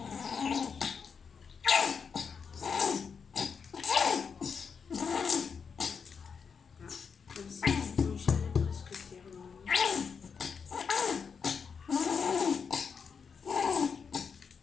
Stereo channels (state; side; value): quieter; right; 6.1 dB